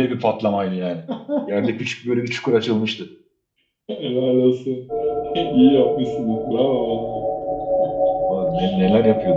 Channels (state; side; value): identical; both; correlation 1.00